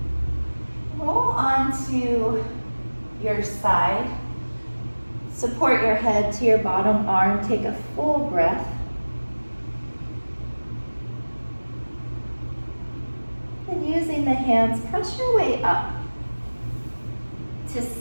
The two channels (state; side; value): inverted; both; correlation -1.00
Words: Roll onto your side. Support your head to your bottom arm. Take a full breath. And using the hands, press your way up to